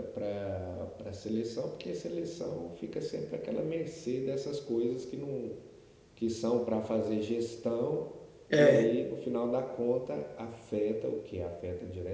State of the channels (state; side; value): identical; both; correlation 1.00